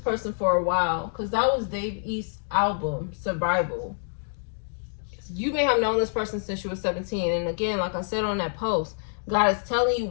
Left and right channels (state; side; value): silent; right; digital silence